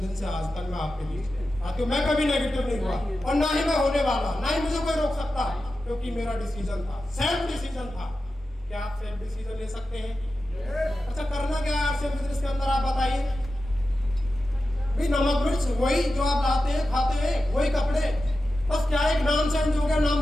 से आज तक मैं आपके लिए आती हूँ। मैं कभी नेगेटिव नहीं हुआ, और ना ही मैं होने वाला, ना ही मुझे कोई रोक सकता, क्योंकि मेरा डिसीजन था, सेल्फ डिसीजन था। क्या आप सेल्फ डिसीजन ले सकते हैं? अच्छा, करना क्या है आपसे बिजनेस के अंदर, आप बताइए। भाई, नमक मिर्च वही जो आप लाते हैं, खाते हैं, वही कपड़े, बस क्या एक नाम चेंज हो गया, नाम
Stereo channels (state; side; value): normal; both; correlation 0.92